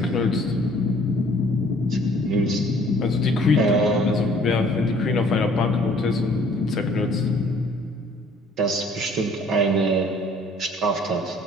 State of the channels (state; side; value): normal; both; correlation 0.57